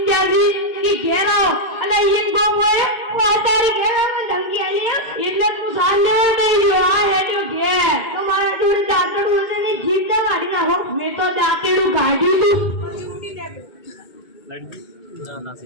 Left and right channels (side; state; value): right; late; 2.2 ms